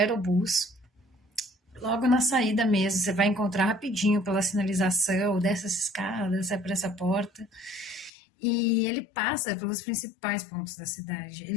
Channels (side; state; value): right; drops out; at 8.1 s